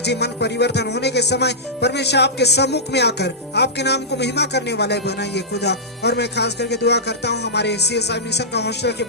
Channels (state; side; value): normal; both; correlation -0.13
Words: मन परिवर्तन होने के समय परमेश्वर आपके सम्मुख में आकर आपके नाम को महिमा करने वाले बनाइए खुदा। और मैं खास करके दुआ करता हूँ हमारे CSI मिशन का हॉस्टल के